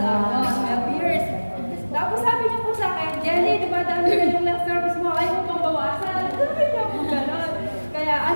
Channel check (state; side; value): inverted; both; correlation -1.00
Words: 12 years. Tapos sabi niya po sa akin, Jelly, di ba dami na yung last service mo, ayaw mo pang bawasan. Sabi niya po gano'n. Kaya,